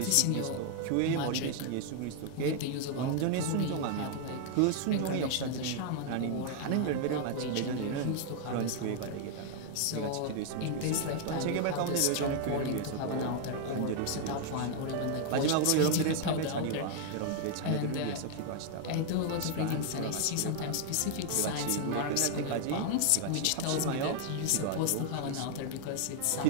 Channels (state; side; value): different; both; correlation 0.00